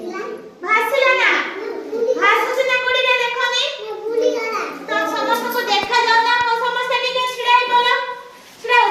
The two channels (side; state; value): both; identical; correlation 1.00